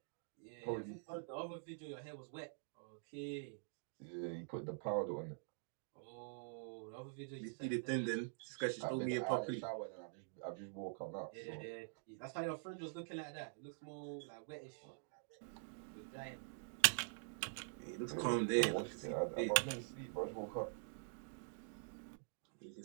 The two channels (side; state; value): left; silent; digital silence